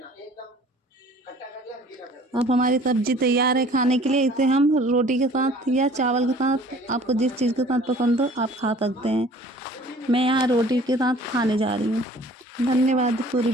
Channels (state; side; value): normal; both; correlation 0.50